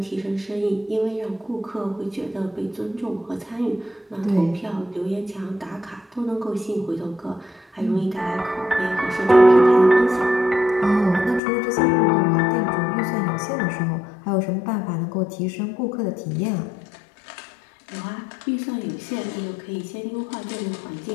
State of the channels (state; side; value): drops out; right; at 11.4 s